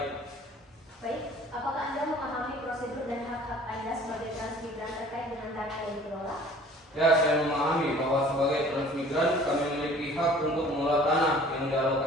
Baik, apakah Anda memahami prosedur dan hak-hak Anda sebagai transmigran terkait dengan tanah yang dikelola? Ya, saya memahami bahwa sebagai transmigran kami memiliki hak untuk mengelola tanah yang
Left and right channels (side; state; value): both; normal; correlation 0.50